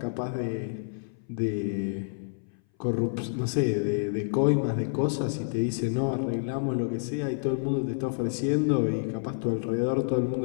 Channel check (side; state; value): right; silent; 58 dB below the other